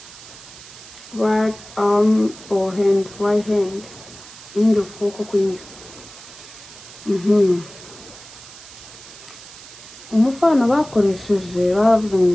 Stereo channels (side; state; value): right; noise; hiss, 18 dB below the sound